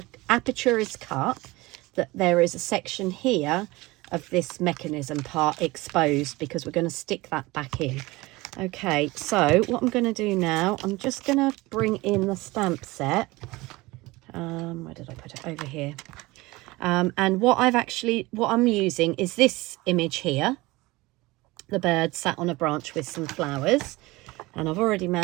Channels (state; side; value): quieter; left; 21.3 dB